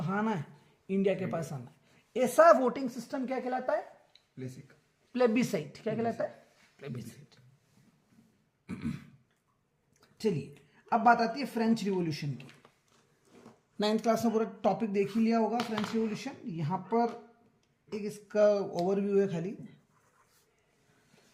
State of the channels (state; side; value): identical; both; correlation 1.00